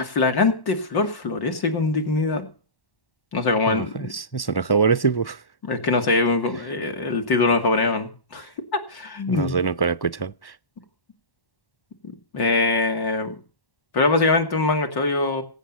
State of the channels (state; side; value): late; right; 1.1 ms